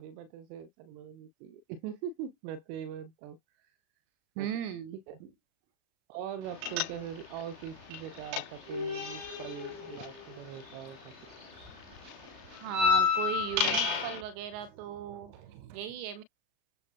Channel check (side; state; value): left; late; 35 ms